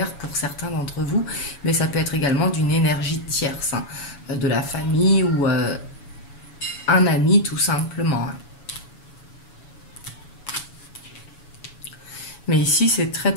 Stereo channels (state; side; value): late; right; 7.1 ms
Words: pour certains d'entre vous, mais ça peut être également d'une énergie tierce, hein, de la famille ou un ami tout simplement. Hein. Mais ici, c'est très